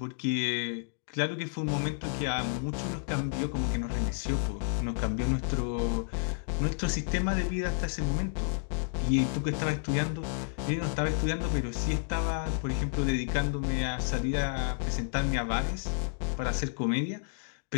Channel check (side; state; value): right; silent; digital silence